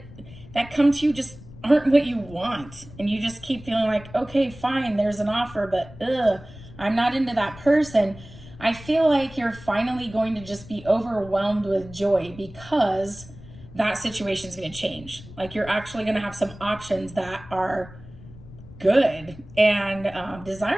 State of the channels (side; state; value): left; noise; rumble, 18 dB below the sound